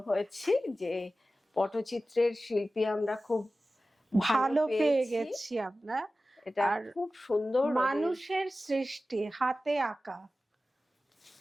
হয়েছি যে পটচিত্রের শিল্পী আমরা খুব ভালো পেয়ে গেছি। আমরা এটা খুব সুন্দর মানুষের সৃষ্টি, হাতে আঁকা,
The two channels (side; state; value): both; normal; correlation 0.95